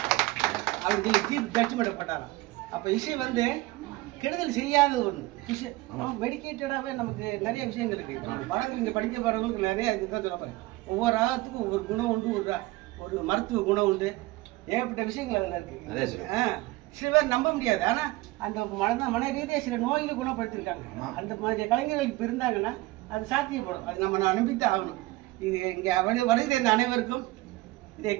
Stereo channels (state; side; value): quieter; left; 19.7 dB